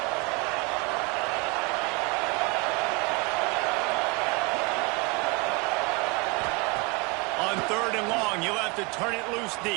On 3rd and long, you'll have to turn it loose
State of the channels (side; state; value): left; quieter; 27.3 dB